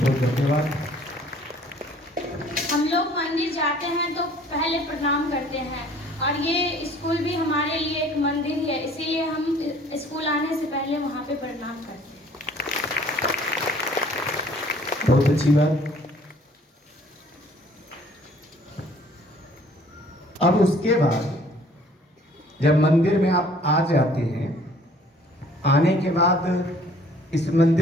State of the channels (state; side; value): normal; both; correlation 0.56